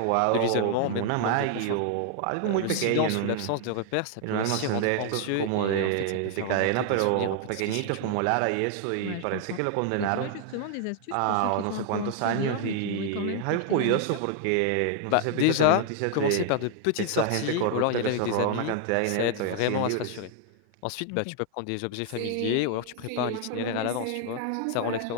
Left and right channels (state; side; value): different; both; correlation 0.00